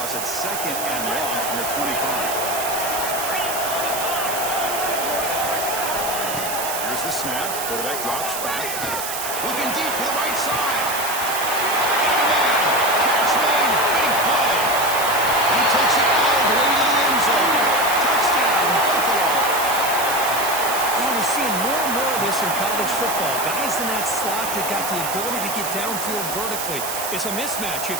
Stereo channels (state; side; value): noise; right; hiss, 5 dB below the sound